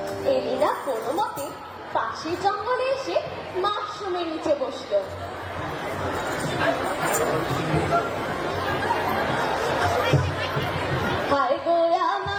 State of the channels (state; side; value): identical; both; correlation 1.00